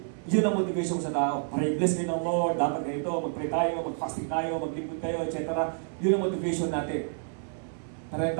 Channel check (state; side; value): silent; left; digital silence